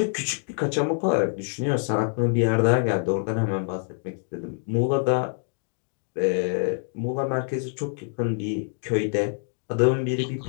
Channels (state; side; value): silent; right; digital silence